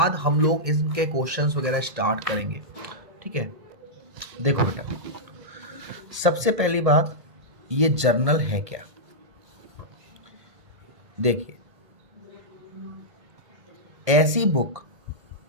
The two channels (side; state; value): left; late; 1.6 ms